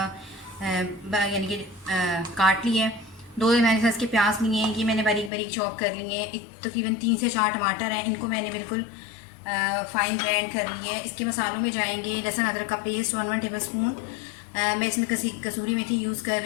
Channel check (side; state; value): right; drops out; at 5.3 s